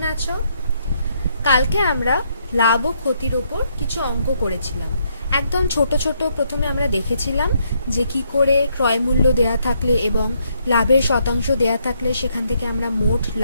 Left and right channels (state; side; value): inverted; both; correlation -0.74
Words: আছো? কালকে আমরা লাভ ও ক্ষতির ওপর কিছু অঙ্ক করেছিলাম। একদম ছোট ছোট প্রথমে আমরা দেখেছিলাম যে কি করে ক্রয় মূল্য দেয়া থাকলে এবং লাভের শতাংশ দেয়া থাকলে সেখান থেকে আমরা মোট